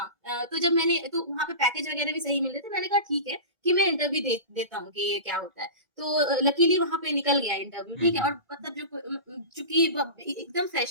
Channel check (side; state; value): left; late; 1.9 ms